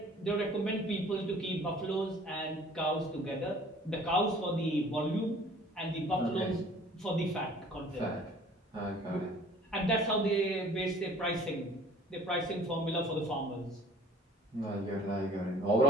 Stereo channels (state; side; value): normal; both; correlation 0.51